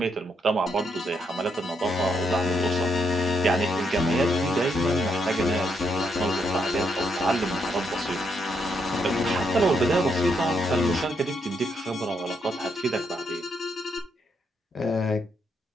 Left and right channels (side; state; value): both; normal; correlation 0.78